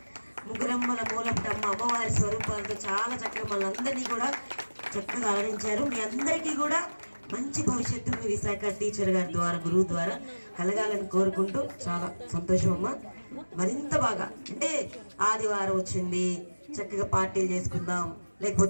ముగ్గురమ్మల మూలపటమ్మ అమ్మవారి స్వరూపాలతో చాలా చక్కగా మనందరినీ కూడా చక్కగా అలరించారు. మీ అందరికీ కూడా మంచి భవిష్యత్తు మీ విశాఖ టీచర్ గారి ద్వారా, గురువు ద్వారా కలగాలని కోరుకుంటూ చాలా సంతోషం అమ్మ. మరింత బాగా అంటే ఆదివారం వచ్చింది, చక్కగా పార్టీలు చేసుకుందాం,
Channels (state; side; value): inverted; both; correlation -1.00